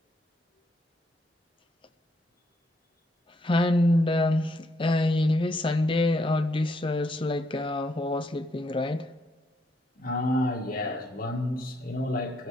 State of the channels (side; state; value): both; normal; correlation 0.75